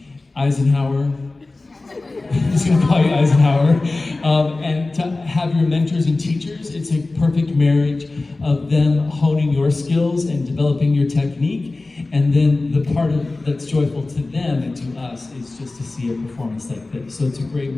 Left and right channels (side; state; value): right; quieter; 3.2 dB